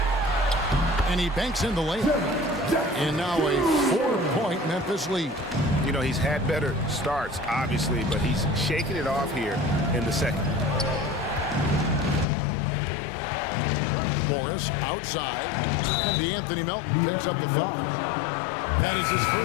And he banks in the layup. And now a 4-point Memphis lead. You know, he's had better starts, obviously, but he's shaking it off here in the second. Morris outside. And DeAnthony Melton picks up the foul. That is his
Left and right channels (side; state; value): right; drops out; at 12.2 s